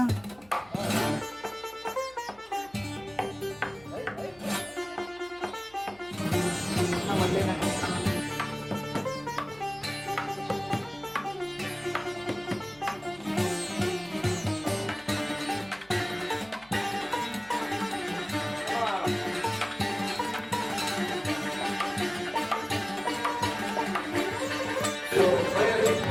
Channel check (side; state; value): left; noise; hum, 27 dB below the sound